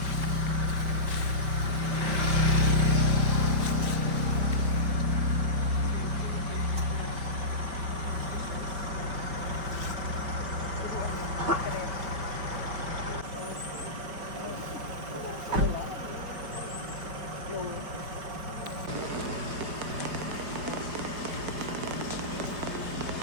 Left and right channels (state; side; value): late; left; 4.8 ms